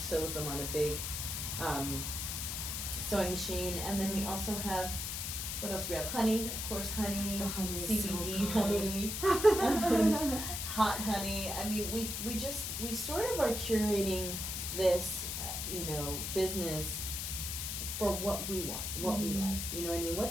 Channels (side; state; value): left; noise; hiss, 3 dB below the sound